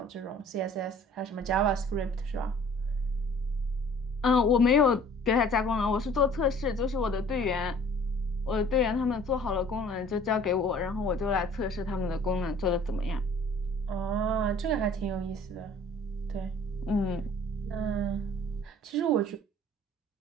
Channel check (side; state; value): both; normal; correlation 0.52